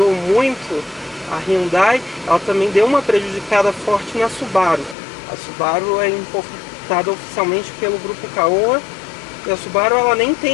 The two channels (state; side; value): drops out; right; at 5.0 s